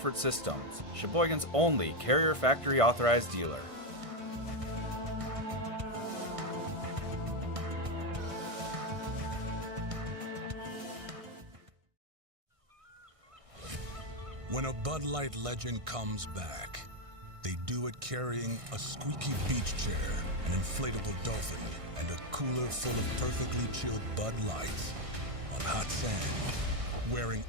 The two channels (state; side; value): late; left; 1.6 ms